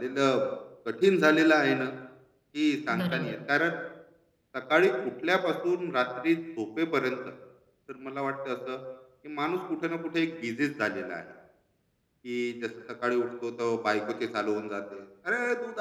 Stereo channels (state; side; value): identical; both; correlation 1.00